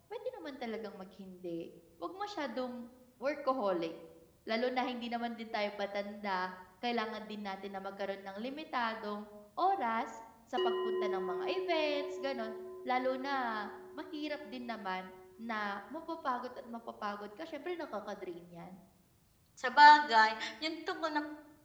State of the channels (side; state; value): both; identical; correlation 1.00